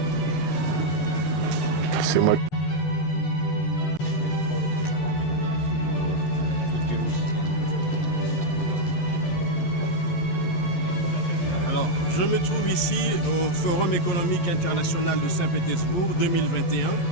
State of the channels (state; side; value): late; right; 11 ms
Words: C'est moi. Alors, je me trouve ici au Forum économique international de Saint-Pétersbourg 2021,